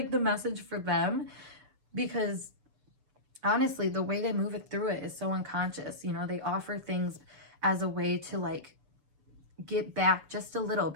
the message for them, because honestly, the way they move it through it is so unconscious. You know, they offer things as a way to like get back just a little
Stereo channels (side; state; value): left; late; 6.9 ms